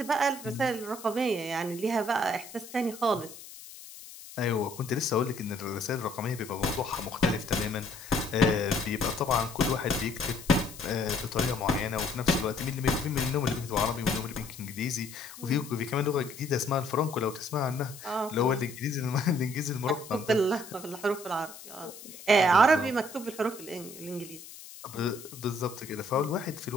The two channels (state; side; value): noise; left; hiss, 16 dB below the sound